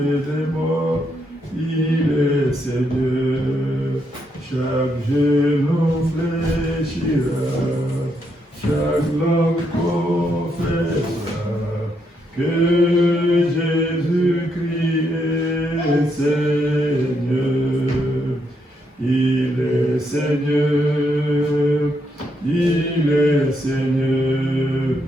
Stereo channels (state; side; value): normal; both; correlation 0.78